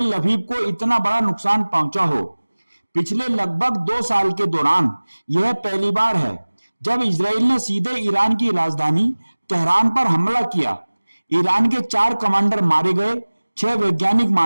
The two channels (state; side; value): inverted; both; correlation -1.00